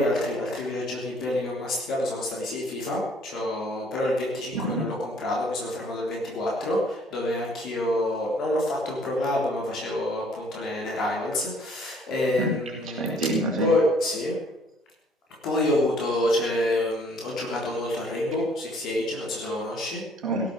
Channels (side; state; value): both; normal; correlation 0.60